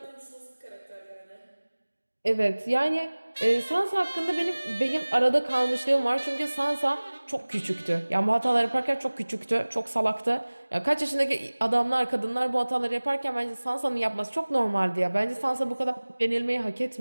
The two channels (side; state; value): both; inverted; correlation -1.00